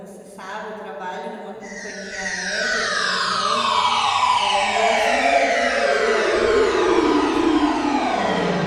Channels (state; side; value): identical; both; correlation 1.00